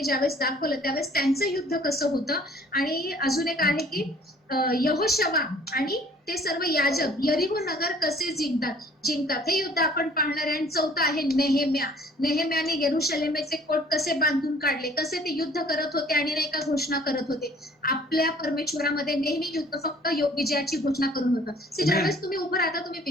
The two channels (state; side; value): normal; both; correlation 0.55